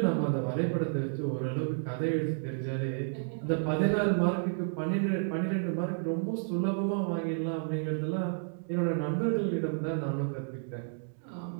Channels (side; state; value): left; silent; digital silence